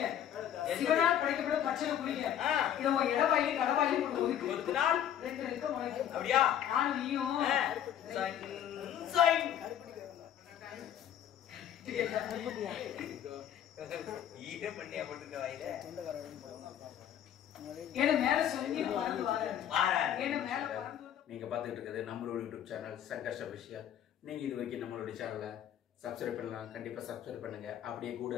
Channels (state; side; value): quieter; right; 10.3 dB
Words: சிவனால் படைக்கப்பட்ட பச்சை புளிங்க. இது உங்க இடவாயி கடவாயி போட்டு ஒதுக்குனால் ரெண்டு ரெக்க முளைக்கும். அப்படியா? நானும் நீயும் ஈர பண்ணியா போட்டுக்க வாயில. ஏன்னா மேல சொல்லி பறந்து வாரேன். ஏன்னா மேல பறந்து. நீங்க பார்த்துட்டு இருக்கிறது நம்மளோட யூடியூப் சேனல் சங்கர்ஷ் அபிஷியல். நீங்க இது வரைக்கும் நம்மளோட சேனலை சப்ஸ்கிரைப் பண்ணலாம். கண்டிப்பா சப்ஸ்கிரைப் பண்ணுங்க. அப்படியே கூட